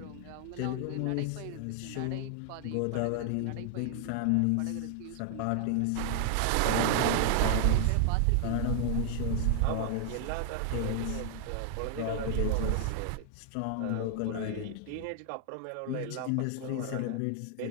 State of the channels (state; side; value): different; both; correlation 0.00